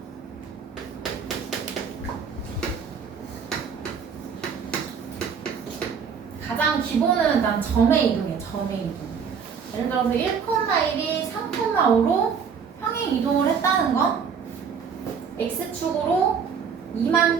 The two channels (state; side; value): quieter; left; 6.5 dB